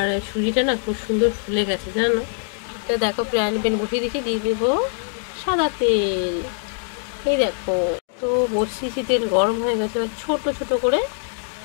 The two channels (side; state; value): right; silent; digital silence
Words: সুজিটা না খুব সুন্দর ফুলে গেছে জানো তো। দেখো ফ্রাইং প্যান বসিয়ে দিয়েছি, দিয়ে দেবো সাদা তেল। এই দেখো তো বসিয়েছি, তেল গরম হয়ে গেছে। এবার ছোট ছোট করে